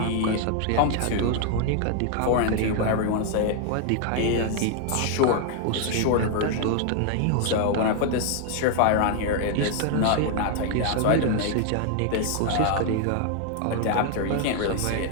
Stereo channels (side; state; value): both; different; correlation 0.00